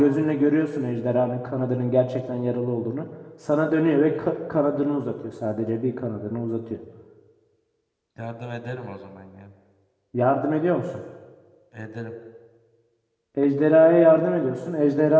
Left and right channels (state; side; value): identical; both; correlation 1.00